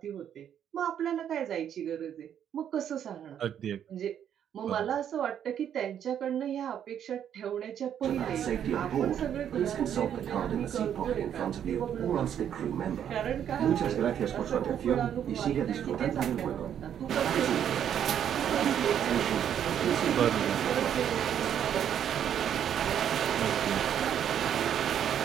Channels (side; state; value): left; quieter; 9.4 dB